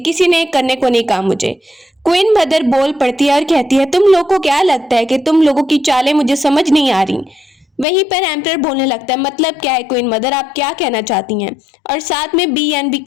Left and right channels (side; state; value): right; drops out; at 7.9 s